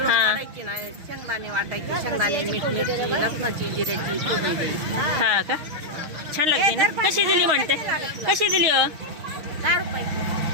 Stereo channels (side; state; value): left; late; 6.4 ms